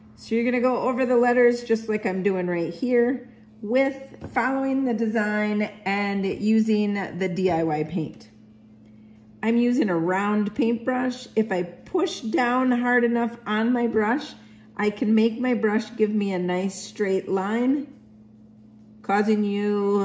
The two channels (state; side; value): identical; both; correlation 1.00